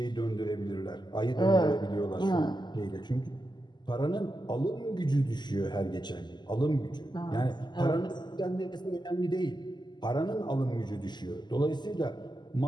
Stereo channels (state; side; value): late; right; 0.21 ms